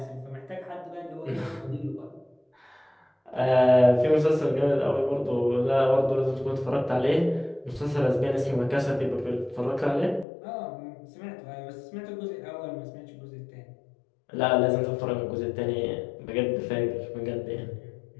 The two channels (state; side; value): drops out; right; at 10.2 s